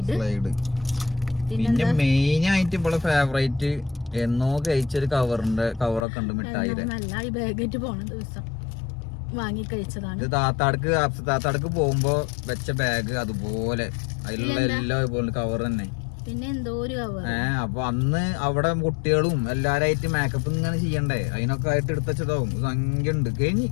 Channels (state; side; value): drops out; right; at 6.1 s